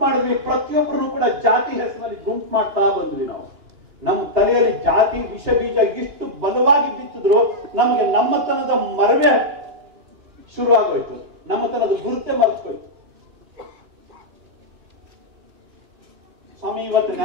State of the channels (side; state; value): left; late; 2.8 ms